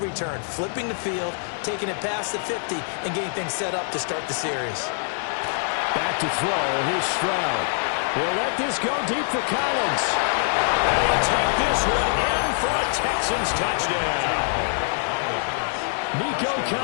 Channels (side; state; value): right; silent; digital silence